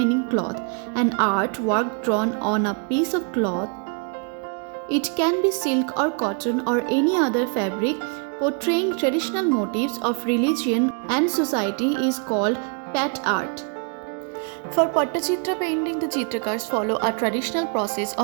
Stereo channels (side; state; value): left; quieter; 38.7 dB